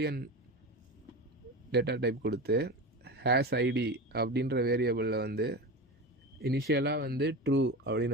டேட்டா டைப் கொடுத்து ஹேஸ் ஐடி அப்படின்ற வேரியபிளில் வந்து இனிஷியலாக வந்து ட்ரூ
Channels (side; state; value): both; normal; correlation 0.26